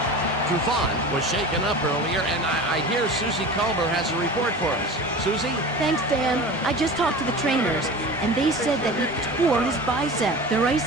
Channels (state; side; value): normal; both; correlation 0.34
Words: Trufant was shaken up earlier, and I hear Susie Culber has a report for us. Susie? Thanks, Dan. I just talked to the trainers, and they said that he tore his bicep. They're